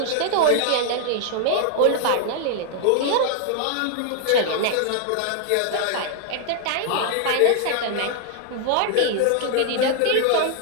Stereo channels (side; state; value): both; different; correlation 0.00